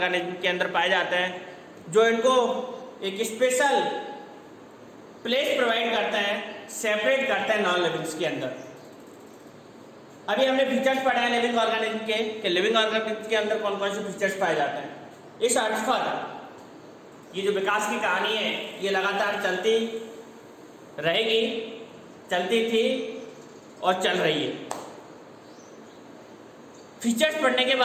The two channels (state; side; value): identical; both; correlation 1.00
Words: के अंदर पाए जाते हैं, जो इनको एक स्पेशल प्लेस प्रोवाइड करते हैं, सेपरेट करते हैं नॉन लिविंग्स के अंदर। अभी हमने फीचर्स पढ़े हैं लिविंग ऑर्गेनिज्म के कि लिविंग ऑर्गेनिज्म के अंदर कौन कौन से फीचर्स पाए जाते हैं। इस अर्थ पर ये जो विकास की कहानी है ये लगातार चलती रहेगी, चलती थी और चल रही है। फीचर्स पढ़ने के